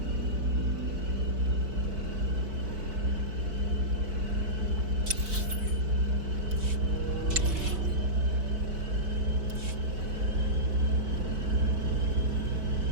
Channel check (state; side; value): late; left; 4.6 ms